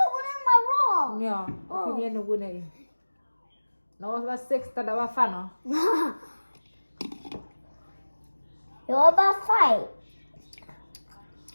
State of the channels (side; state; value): both; inverted; correlation -1.00